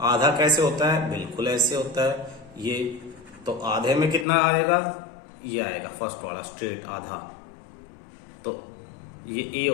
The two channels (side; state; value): right; drops out; at 4.2 s